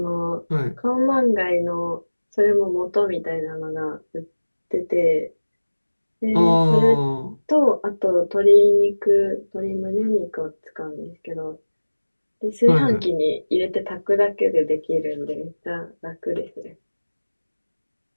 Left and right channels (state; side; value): inverted; both; correlation -1.00